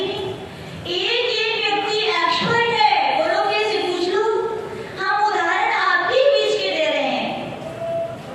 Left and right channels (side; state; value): both; identical; correlation 1.00